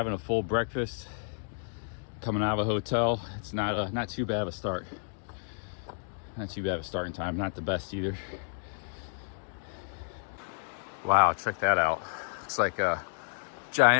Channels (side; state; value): right; silent; digital silence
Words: a full breakfast. Coming out of a hotel, it's not too bad of a start. Not too bad of a starting time. Not the best either. Wow, check that out. Looks like a